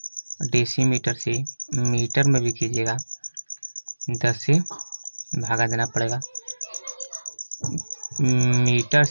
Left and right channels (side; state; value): both; inverted; correlation -1.00